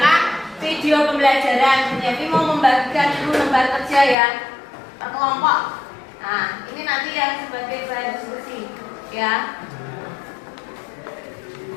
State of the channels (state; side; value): drops out; right; at 4.2 s